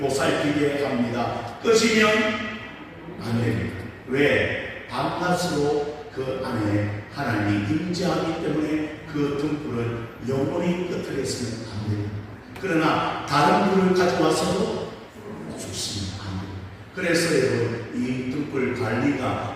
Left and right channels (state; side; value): identical; both; correlation 1.00